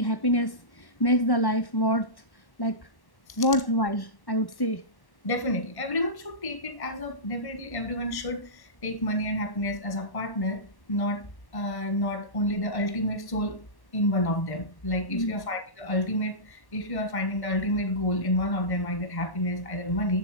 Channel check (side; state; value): right; late; 1.1 ms